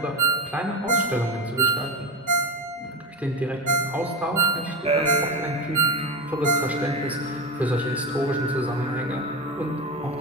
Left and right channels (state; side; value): noise; right; hum, 29 dB below the sound